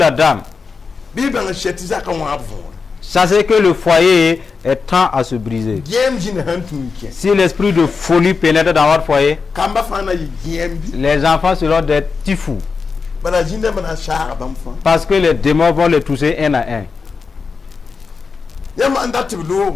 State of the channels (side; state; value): right; quieter; 5.0 dB